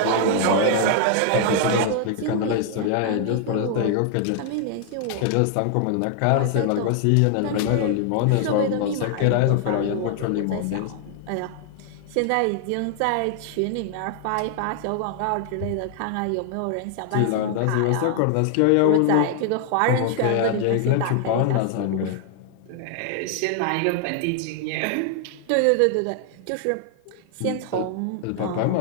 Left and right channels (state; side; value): different; both; correlation 0.00